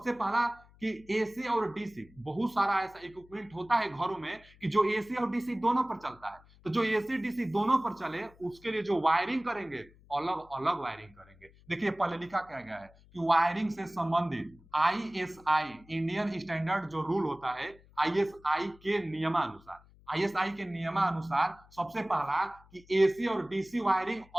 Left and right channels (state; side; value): noise; left; hum, 26 dB below the sound